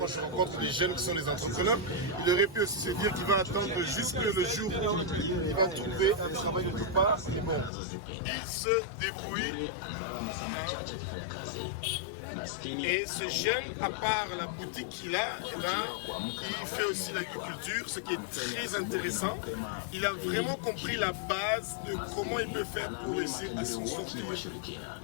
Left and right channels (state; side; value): drops out; right; at 7.7 s